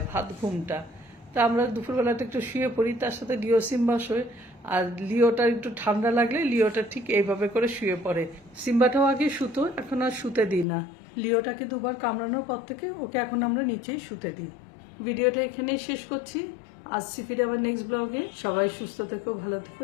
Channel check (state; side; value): drops out; right; at 10.7 s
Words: ভাত ঘুমটা। তা আমরা দুপুরবেলাটা একটু শুয়ে পড়ি, তার সাথে লিও সিম্বা শোয়। আর লিওটা একটু ঠান্ডা লাগলে লিওটা ঠিক এইভাবে করে শুয়ে পড়ে। সিম্বাটাও আগে শুতো, এখন আর শুতে দিই না। লিওটাকে 2 বার কামড়ানোর পর থেকে ওকে এখন আমরা নিচেই শুতে দিই। ভিডিওটা এখানেই শেষ করছি, আসছি ফিরে আবার নেক্সট ব্লগে। সবাই সুস্থ থেকো, ভালো থেকো।